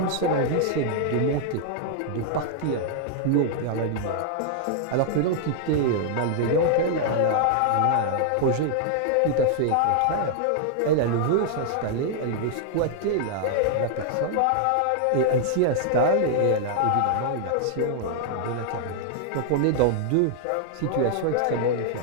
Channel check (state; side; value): different; both; correlation -0.01